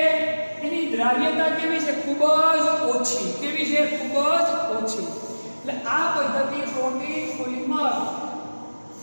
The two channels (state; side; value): inverted; both; correlation -1.00